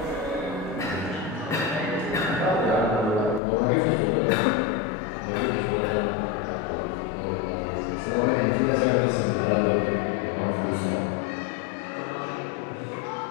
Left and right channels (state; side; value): drops out; right; at 3.4 s